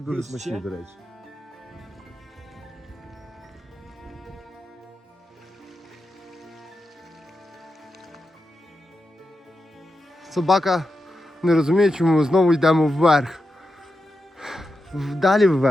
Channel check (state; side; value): normal; both; correlation 0.89